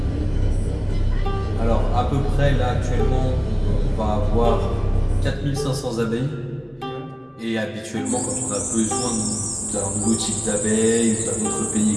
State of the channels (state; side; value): identical; both; correlation 1.00